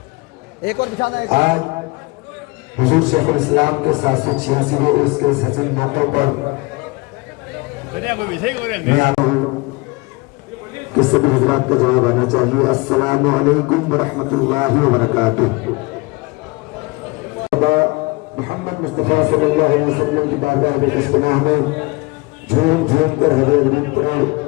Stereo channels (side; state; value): right; quieter; 25.3 dB